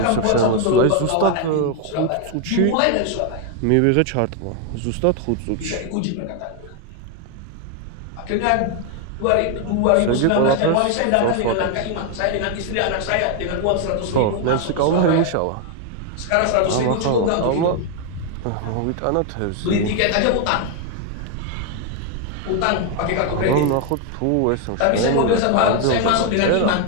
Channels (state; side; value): different; both; correlation 0.01